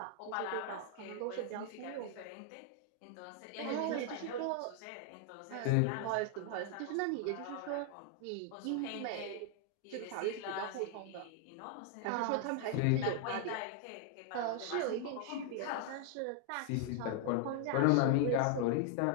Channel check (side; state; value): both; different; correlation 0.00